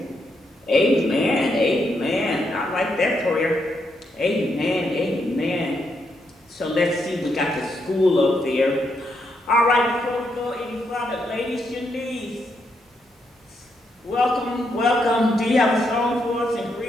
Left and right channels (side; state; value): both; normal; correlation 0.79